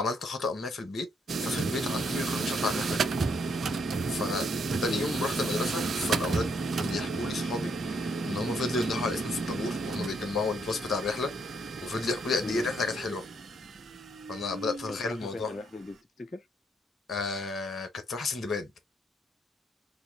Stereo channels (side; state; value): both; normal; correlation 0.72